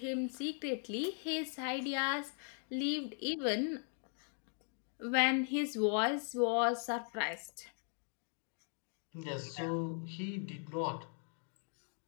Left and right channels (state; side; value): silent; right; 52 dB below the other